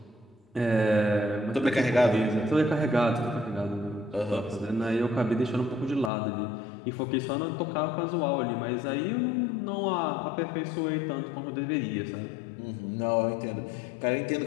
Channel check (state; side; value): drops out; right; at 6.1 s